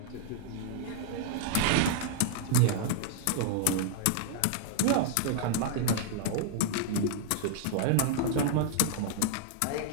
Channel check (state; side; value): different; both; correlation -0.01